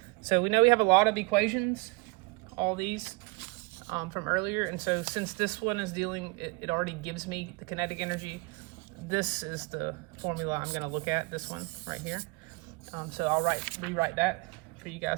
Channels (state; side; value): quieter; left; 27.1 dB